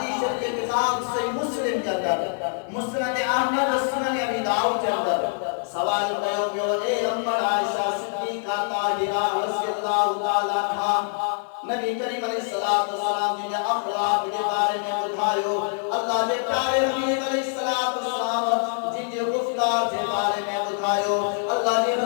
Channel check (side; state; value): right; silent; 62 dB below the other